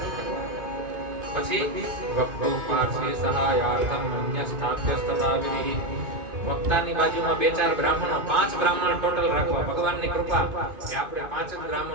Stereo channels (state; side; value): late; left; 2.5 ms